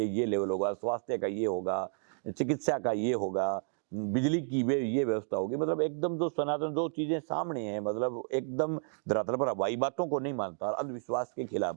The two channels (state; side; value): silent; left; 57 dB below the other